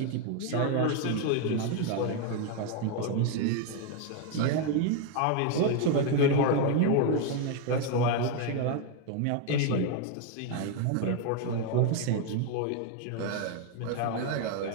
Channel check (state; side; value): different; both; correlation 0.01